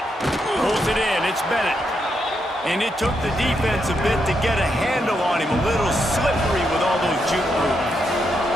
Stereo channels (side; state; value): both; normal; correlation 0.81